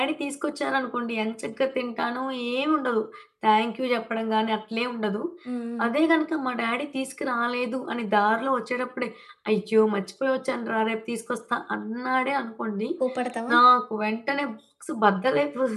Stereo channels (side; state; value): both; identical; correlation 1.00